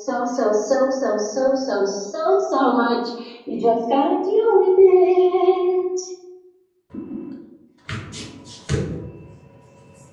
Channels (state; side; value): identical; both; correlation 1.00